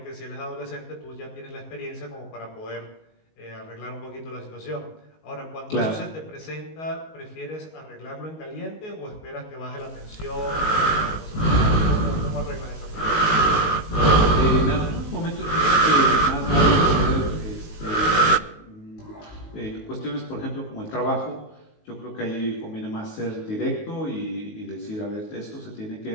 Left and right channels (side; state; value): right; late; 19 ms